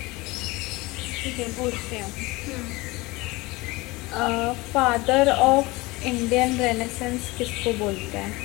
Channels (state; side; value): quieter; right; 22.4 dB